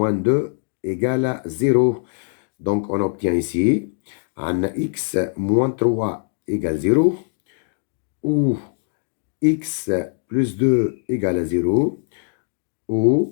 2 égale à 0. Donc, on obtient ici, un x moins 3 égale 0, ou x plus 2 égale à 0,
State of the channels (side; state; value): right; silent; 64 dB below the other